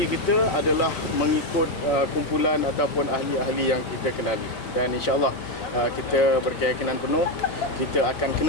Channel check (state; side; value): late; right; 5.5 ms